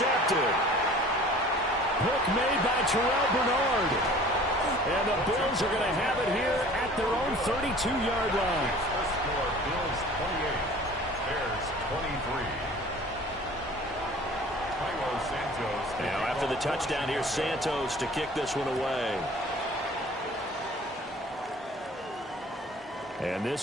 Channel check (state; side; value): normal; both; correlation 0.47